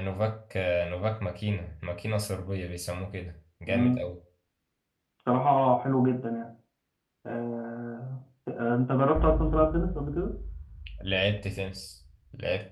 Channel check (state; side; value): identical; both; correlation 1.00